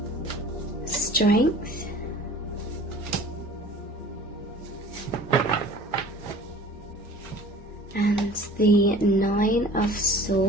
Strength, and the Nine of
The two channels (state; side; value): normal; both; correlation 0.46